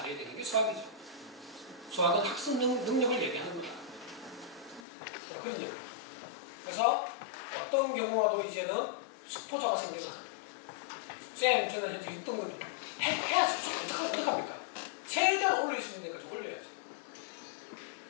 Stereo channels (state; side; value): drops out; right; at 4.9 s